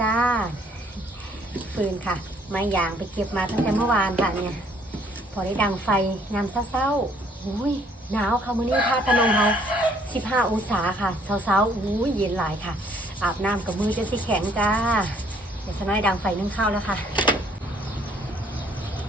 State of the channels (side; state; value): both; normal; correlation 0.63